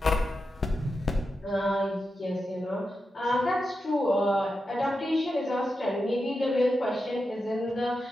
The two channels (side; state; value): both; normal; correlation 0.89